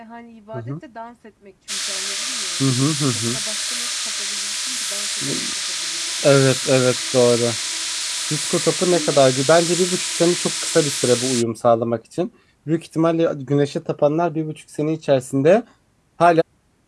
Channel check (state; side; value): identical; both; correlation 1.00